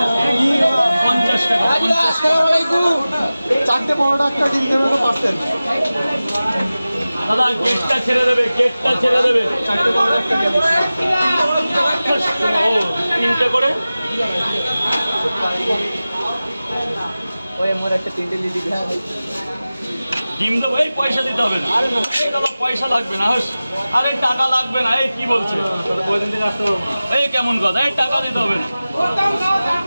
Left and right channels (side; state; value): both; inverted; correlation -0.96